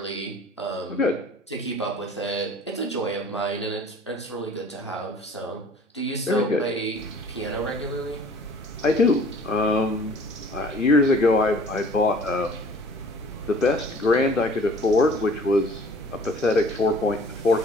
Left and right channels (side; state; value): both; normal; correlation 0.50